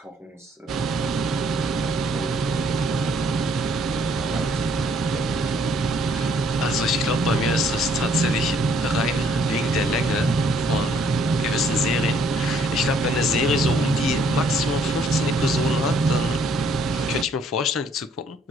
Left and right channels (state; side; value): normal; both; correlation 0.64